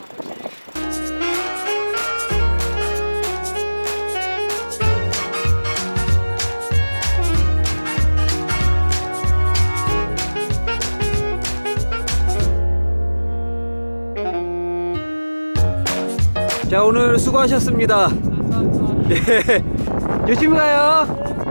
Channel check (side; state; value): both; inverted; correlation -1.00